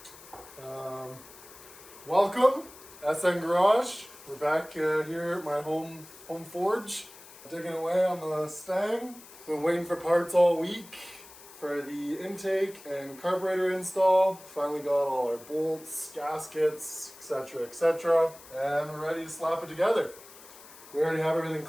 Welcome, SN Garage. We're back here at my home forge, digging away on the Mustang. Been waiting for parts all week for the intake and carburetor install. Finally got all our bolts, gaskets, etc., and we're ready to slap it together. We already have everything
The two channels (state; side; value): noise; left; hiss, 19 dB below the sound